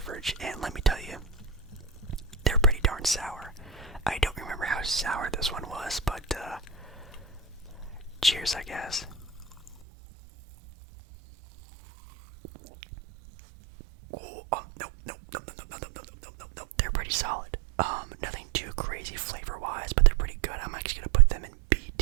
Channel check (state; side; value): drops out; left; at 9.8 s